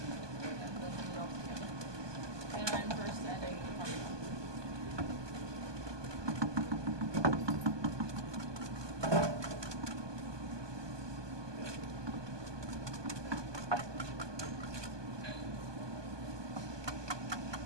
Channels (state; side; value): late; left; 1.2 ms